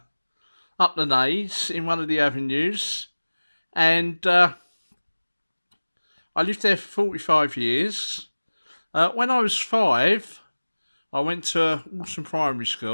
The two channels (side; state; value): both; inverted; correlation -1.00